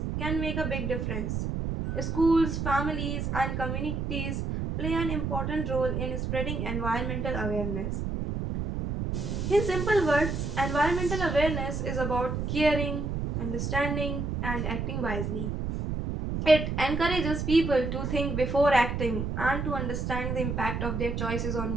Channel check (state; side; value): noise; right; rumble, 2 dB below the sound